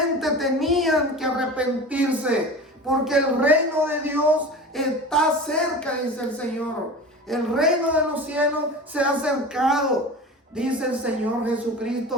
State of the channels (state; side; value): normal; both; correlation 0.34